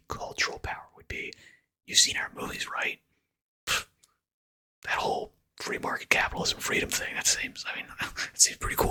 cultural power, would be, you've seen our movies, right? That whole free market capitalism freedom thing, that seems, it seems pretty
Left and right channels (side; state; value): both; identical; correlation 1.00